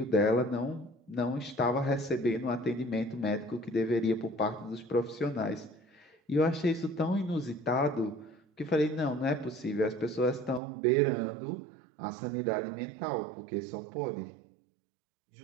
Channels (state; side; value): drops out; left; at 10.6 s